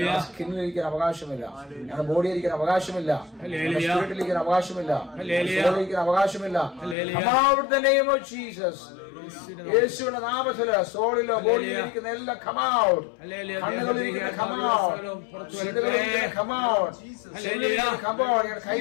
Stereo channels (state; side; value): drops out; right; at 7.0 s